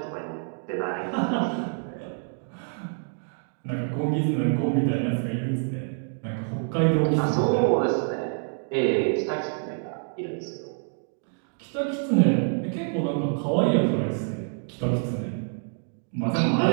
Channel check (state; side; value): silent; left; 60 dB below the other